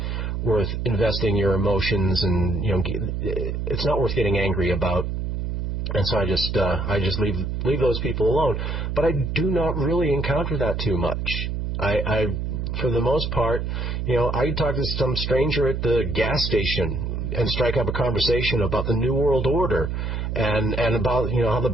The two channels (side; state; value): right; noise; hum, 2 dB below the sound